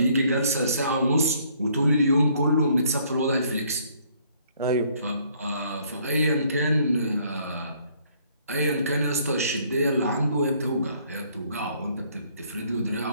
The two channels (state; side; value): inverted; both; correlation -0.64